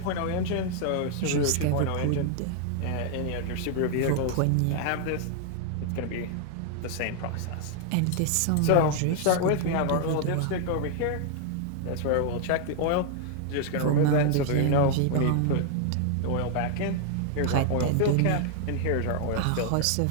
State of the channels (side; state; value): both; different; correlation 0.00